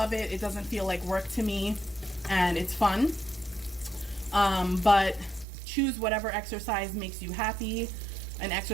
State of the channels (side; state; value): left; drops out; at 5.5 s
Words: it, it doesn't feel like work to me, and it's fun. But choose whatever exercise makes you happy, an